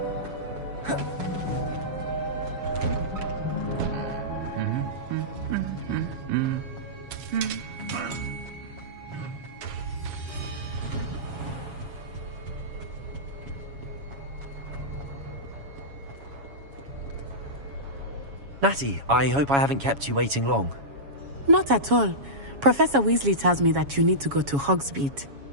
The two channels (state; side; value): late; left; 7.2 ms